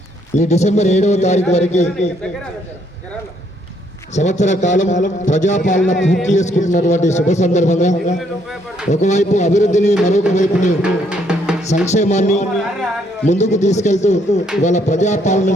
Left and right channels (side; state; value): both; normal; correlation 0.70